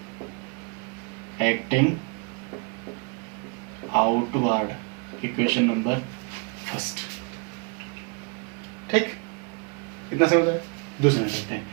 acting outward, equation number first. ठीक, कितना समझ आया? दूसरा करते हैं,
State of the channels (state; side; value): quieter; left; 33.8 dB